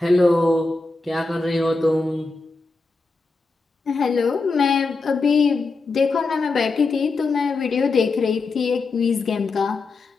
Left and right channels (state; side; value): quieter; right; 3.7 dB